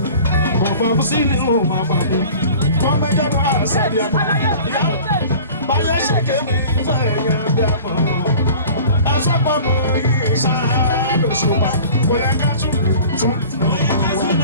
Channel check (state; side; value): inverted; both; correlation -0.43